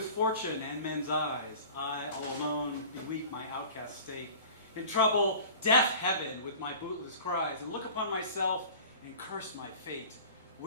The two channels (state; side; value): inverted; both; correlation -0.41